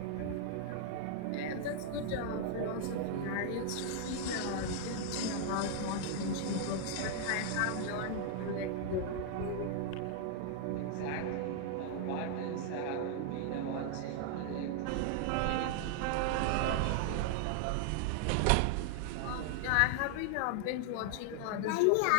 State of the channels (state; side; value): different; both; correlation 0.00